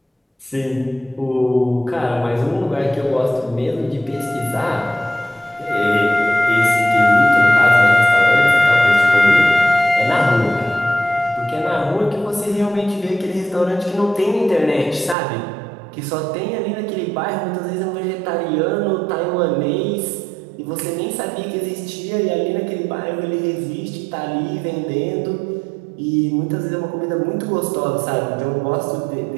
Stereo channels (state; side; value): drops out; left; at 15.2 s